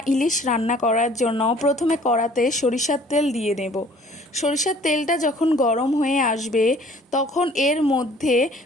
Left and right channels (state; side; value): normal; both; correlation 0.54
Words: ইলিশ রান্না করার জন্য প্রথমে কড়াতে সরিষার তেল দিয়ে নেব। সরিষার তেলটা যখন গরম হয়ে আসবে তখন এর মধ্যে